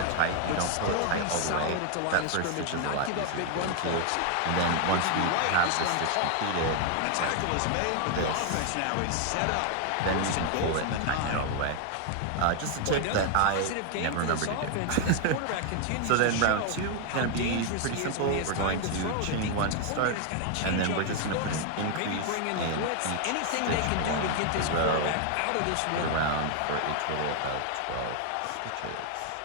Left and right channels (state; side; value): different; both; correlation 0.00